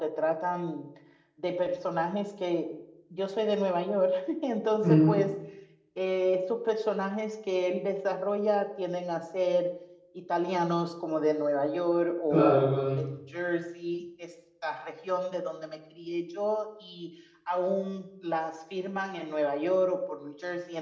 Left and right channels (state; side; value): identical; both; correlation 1.00